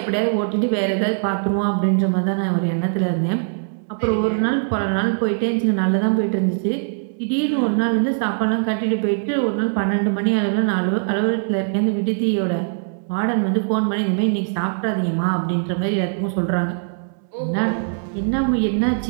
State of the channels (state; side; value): silent; left; 65 dB below the other